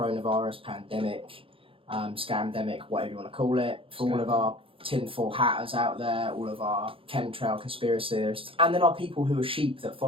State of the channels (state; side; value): late; left; 0.26 ms